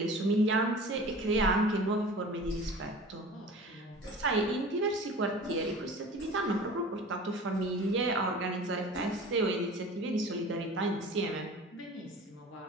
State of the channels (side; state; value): both; normal; correlation 0.40